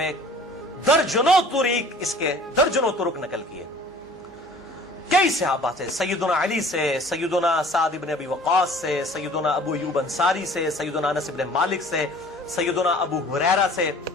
درجنوں طریق، اس کے درجنوں طرق نقل کیے کئی صحابہ سے، سیدنا علی سے، سیدنا سعد بن ابی وقاص سے، سیدنا ابو ایوب انصاری سے، سیدنا انس بن مالک سے، سیدنا ابو ہریرہ سے،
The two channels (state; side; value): normal; both; correlation 0.49